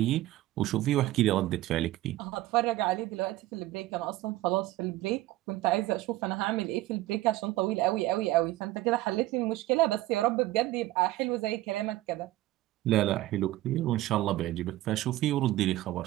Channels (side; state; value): left; quieter; 16.3 dB